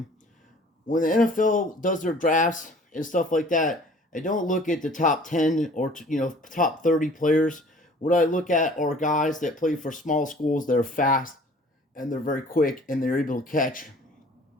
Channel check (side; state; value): both; normal; correlation 0.51